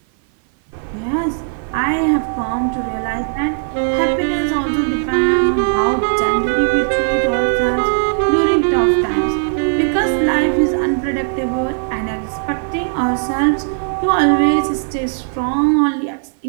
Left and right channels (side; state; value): left; silent; 57 dB below the other